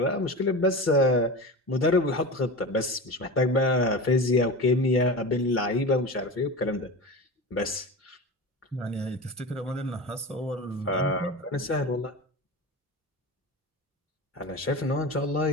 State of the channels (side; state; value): both; normal; correlation 0.28